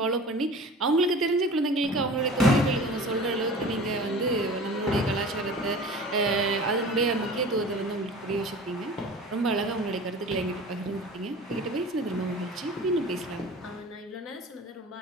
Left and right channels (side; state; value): both; normal; correlation 0.40